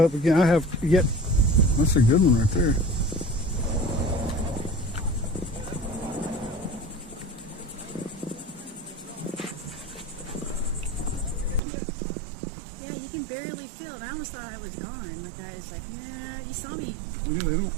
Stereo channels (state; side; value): drops out; left; at 11.6 s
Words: again. I have yet. That's a good one right there. Yeah, you can barely feel it. I almost thought I was gone. Like I was like, nah. You saw me. Yeah,